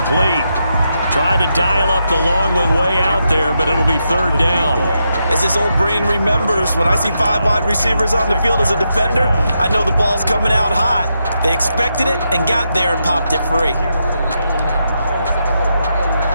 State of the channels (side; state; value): both; inverted; correlation -0.83